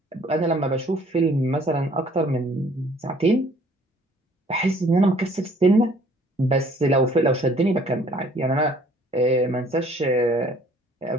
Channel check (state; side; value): normal; both; correlation 0.58